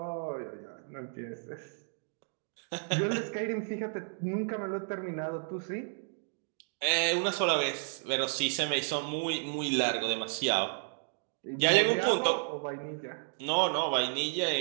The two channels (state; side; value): silent; left; digital silence